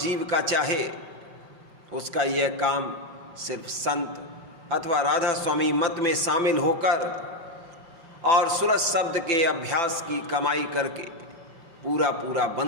का चाहे, उसका यह काम सिर्फ संत अथवा राधा स्वामी मत में शामिल होकर और सूरज शब्द के अभ्यास की कमाई करके पूरा पूरा बन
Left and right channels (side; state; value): left; late; 5.9 ms